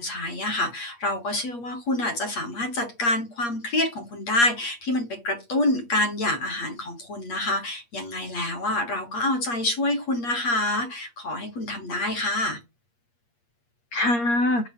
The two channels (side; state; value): right; late; 8.5 ms